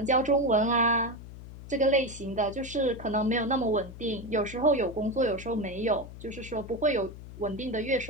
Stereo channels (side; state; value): left; noise; hum, 14 dB below the sound